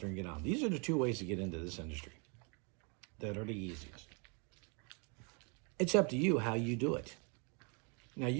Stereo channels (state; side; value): quieter; left; 35.0 dB